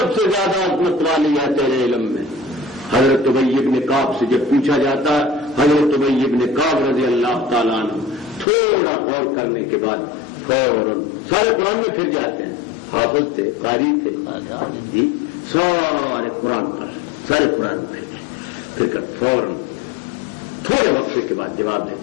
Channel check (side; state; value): right; drops out; at 8.5 s